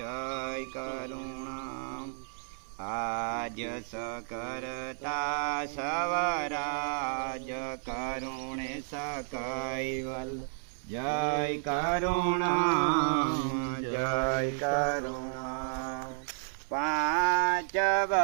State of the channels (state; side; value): silent; left; 57 dB below the other